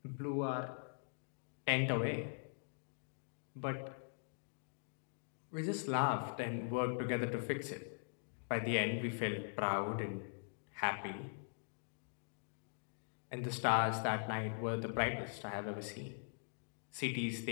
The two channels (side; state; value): right; silent; digital silence